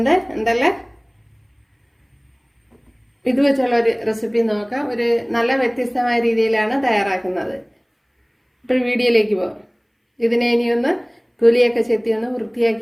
എന്തല്ലേ ഇത് വെച്ചുള്ള ഒരു റെസിപ്പി നോക്കാം. ഒരു നല്ല വ്യത്യസ്തമായ രീതിയിലാണ് തയ്യാറാക്കുന്നത്. ഇപ്പോൾ വീഡിയോയിലേക്ക് പോകാം. ഇതിനെ ഇനിയൊന്ന് തൊലിയൊക്കെ ചെത്തി ഒന്ന്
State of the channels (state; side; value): identical; both; correlation 1.00